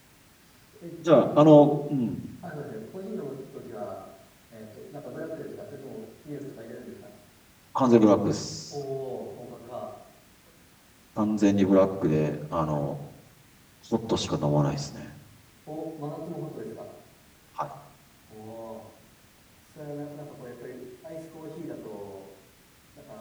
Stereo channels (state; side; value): identical; both; correlation 1.00